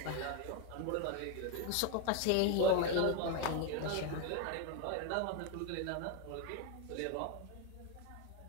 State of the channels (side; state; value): both; different; correlation 0.02